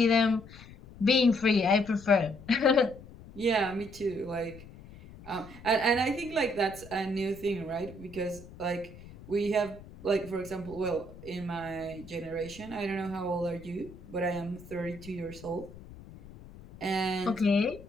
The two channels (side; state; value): left; noise; rumble, 18 dB below the sound